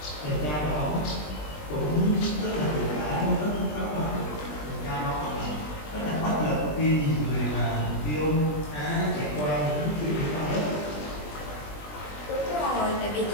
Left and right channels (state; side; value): late; right; 20 ms